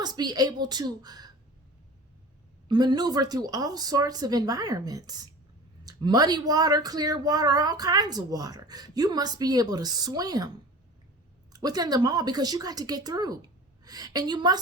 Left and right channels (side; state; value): both; normal; correlation 0.39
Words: be able to maneuver through all sorts of environments. Muddy water, clear water, all kinds of water. You must be able to swim within them all because you got to get through. And you